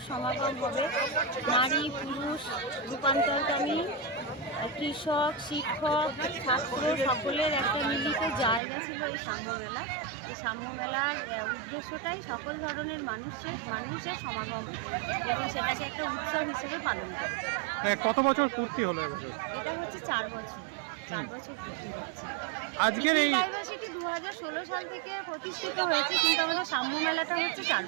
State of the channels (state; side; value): drops out; left; at 8.6 s